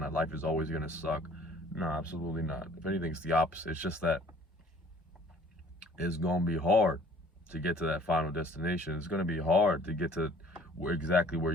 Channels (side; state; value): both; normal; correlation 0.54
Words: that life is always going to suck. No, absolutely not. If anything, it's the opposite. It's just that it's going to be hard to get to that final destination. It's going to be hard to get to exactly where